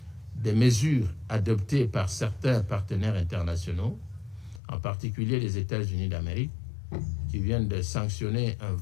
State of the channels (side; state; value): right; drops out; at 4.6 s